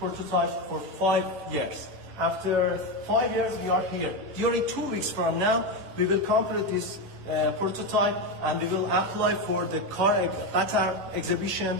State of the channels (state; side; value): late; left; 10 ms